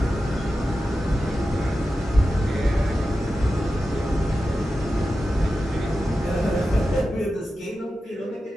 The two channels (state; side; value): normal; both; correlation 0.92